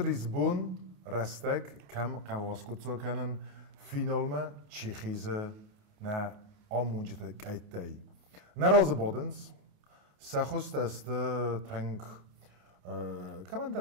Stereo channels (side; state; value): left; late; 28 ms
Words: Lisbon restek kem qawaskutso kenen finalme Tsjechize na amunjete kaitei. Na razabodens سخست است تنگ کمان